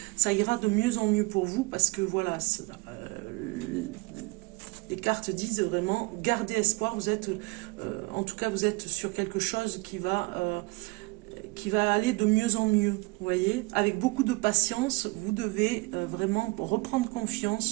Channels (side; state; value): left; quieter; 25.1 dB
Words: ça ira de mieux en mieux pour vous, parce que voilà, les cartes disent vraiment garder espoir. Vous êtes, en tout cas, vous êtes sur quelque chose qui va aller de mieux en mieux. Vous voyez, avec beaucoup de patience, vous devez vraiment reprendre